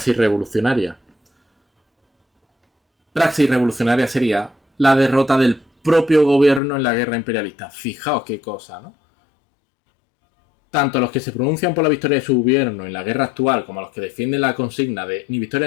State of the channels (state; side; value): drops out; right; at 6.6 s